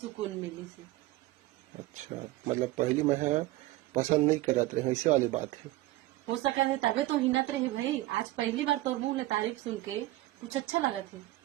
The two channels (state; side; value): quieter; left; 17.8 dB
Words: मिली से। अच्छा मतलब पहली में है पसंद नहीं करत रहे, ऐसे वाली बात है। हो सका है तबे तो हिनत रहे भाई। आज पहली बार तोर मुंह ले तारीफ सुन के कुछ अच्छा लगा थे।